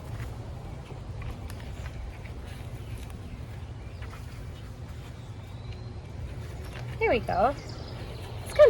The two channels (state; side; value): identical; both; correlation 1.00